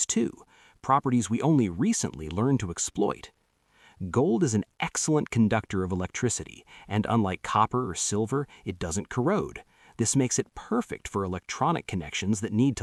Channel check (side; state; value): both; identical; correlation 1.00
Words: too, properties we only recently learned to exploit. Gold is an excellent conductor of electricity, and unlike copper or silver, it doesn't corrode. This makes it perfect for electronic connections that need